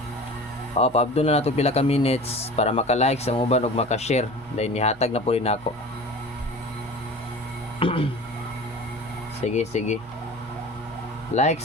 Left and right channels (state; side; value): noise; left; hum, 24 dB below the sound